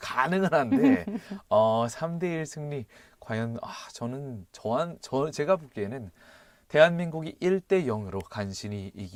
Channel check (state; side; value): identical; both; correlation 1.00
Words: 가능은 한데 3대1 승리 과연 제가 보기에는 대한민국이 1대 0으로 간신히